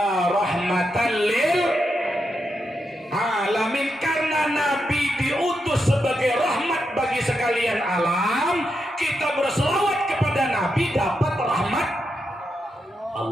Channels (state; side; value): normal; both; correlation 0.85